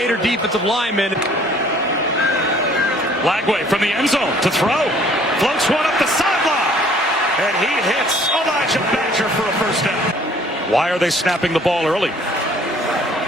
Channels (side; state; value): both; normal; correlation 0.56